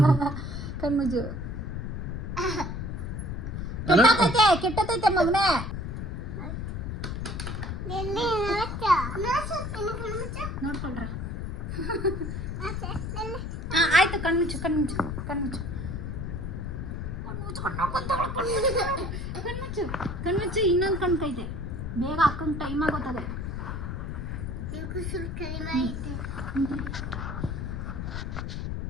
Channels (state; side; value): noise; left; rumble, 4 dB below the sound